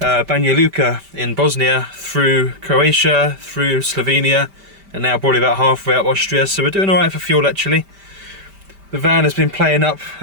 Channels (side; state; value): left; late; 5.1 ms